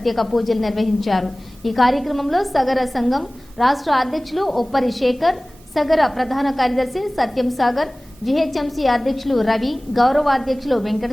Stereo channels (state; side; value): normal; both; correlation 0.98